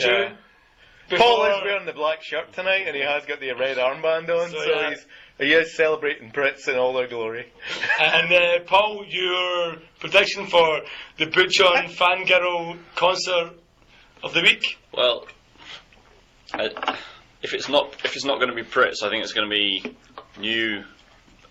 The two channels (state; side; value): identical; both; correlation 1.00